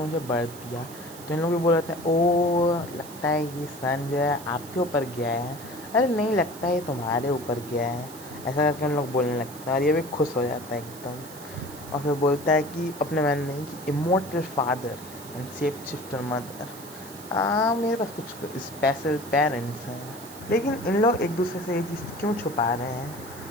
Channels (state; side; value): noise; right; hiss, 16 dB below the sound